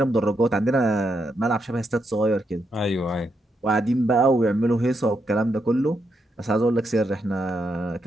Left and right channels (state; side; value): normal; both; correlation 0.81